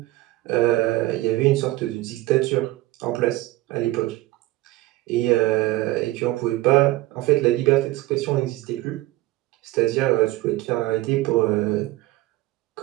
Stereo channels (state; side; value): quieter; left; 18.0 dB